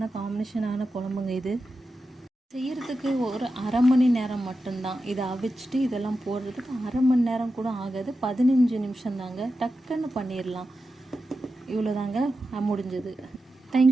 காம்பினேஷனான குழம்புங்க இது. செய்கிறதுக்கு ஒரு அரை மணி நேரம் மட்டும்தான். இதை அவிச்சிட்டு இதெல்லாம் போடுறதுக்கு அரை மணி நேரம் கூட ஆகாது, 15 நிமிஷம் தாங்க. டக்குன்னு பண்ணிடலாம். இவ்வளோதாங்க, முடிஞ்சது.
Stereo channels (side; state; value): both; normal; correlation 0.91